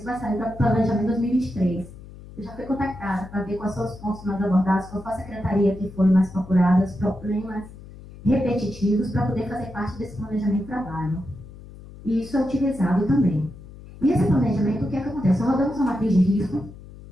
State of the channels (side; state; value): left; noise; hum, 17 dB below the sound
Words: vai sair para planejamento 2023. Eu já fui contactada para ver quais são os pontos mais abordados, qual foi a secretaria que foi mais procurada, os problemas repetitivos, para poder fazer parte desse planejamento de trabalho. E isso é utilizado também. E esse planejamento, o que é que acontece? Nós rodamos uma matriz de risco,